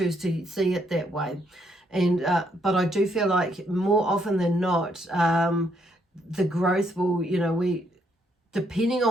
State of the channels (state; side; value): normal; both; correlation 0.73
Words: to see it that way. And but I do feel like more often than not, the growth will, you know, we, depending